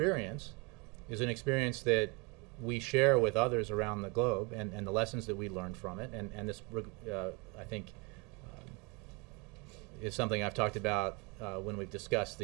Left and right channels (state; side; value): quieter; left; 28.5 dB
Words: is an experience that we share with others around the globe, and the lessons that we learned from it. And this, I think, is something I've talked about when we've discussed